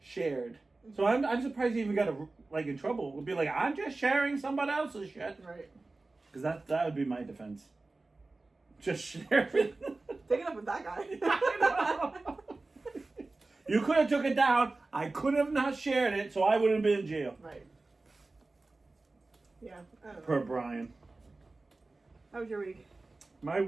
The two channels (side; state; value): left; quieter; 3.3 dB